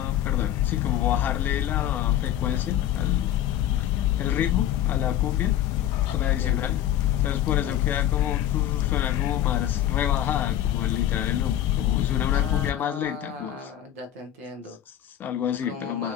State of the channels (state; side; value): quieter; right; 11.7 dB